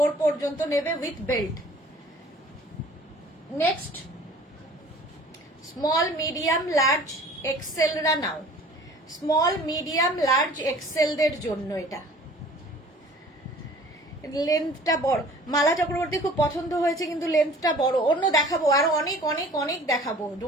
পর্যন্ত নেবে with belt. Next small, medium, large, এক্সেলরা নাও, স্মল, মিডিয়াম, লার্জ, এক্সেলদের জন্য এটা। লেন্থটা বড়, মালা চক্রবর্তী খুব পছন্দ হয়েছে, কিন্তু লেন্থটা বড়। অন্য দেখাবো, আরো অনেক অনেক অনেক দেখাবো,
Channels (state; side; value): normal; both; correlation 0.48